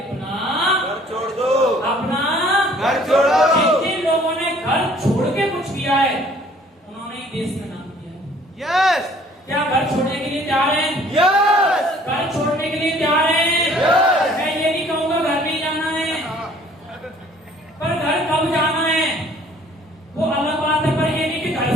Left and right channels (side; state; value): both; normal; correlation 0.56